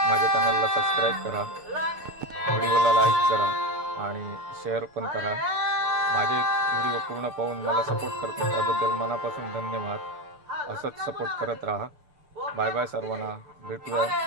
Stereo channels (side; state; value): left; late; 6.8 ms